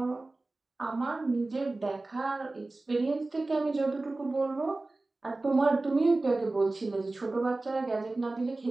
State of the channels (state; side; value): quieter; left; 3.1 dB